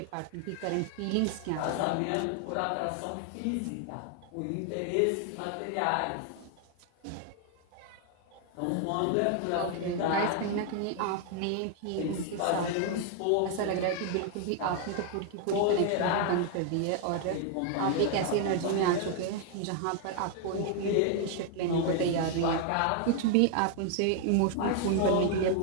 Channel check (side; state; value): both; different; correlation 0.00